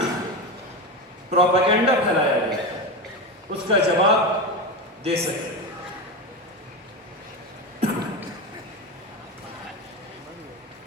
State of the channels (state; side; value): normal; both; correlation 0.19